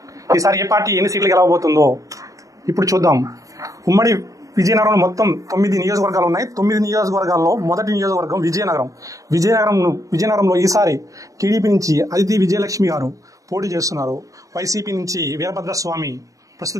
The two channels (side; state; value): left; late; 0.16 ms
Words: ఈసారి ఏ పార్టీ ఎన్ని సీట్లు గెలవబోతుందో ఇప్పుడు చూద్దాం. ఉమ్మడి విజయనగరంలో మొత్తం 9 నియోజకవర్గాలు ఉన్నాయి. 9 నియోజకవర్గాల్లో మొదటి నియోజకవర్గం విజయనగరంలో ఈసారి టీడీపీ నుంచి అదితి విజయలక్ష్మి గారు పోటీ చేస్తున్నారు. వైసీపీ నుంచి వీరభద్రస్వామి